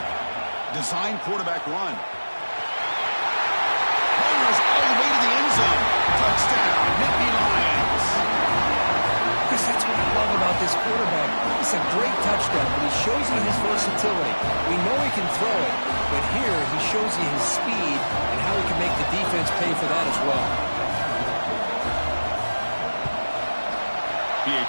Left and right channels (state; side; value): inverted; both; correlation -1.00